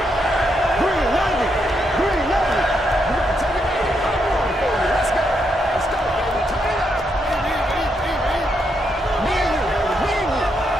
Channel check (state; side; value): normal; both; correlation 0.79